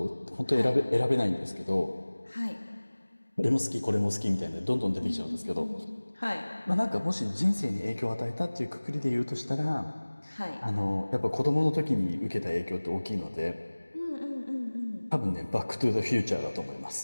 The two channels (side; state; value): both; inverted; correlation -1.00